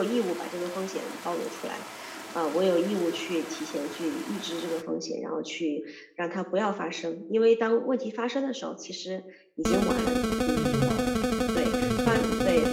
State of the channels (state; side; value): identical; both; correlation 1.00